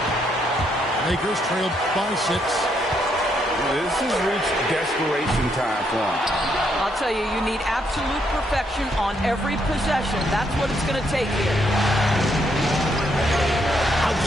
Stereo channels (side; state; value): both; normal; correlation 0.75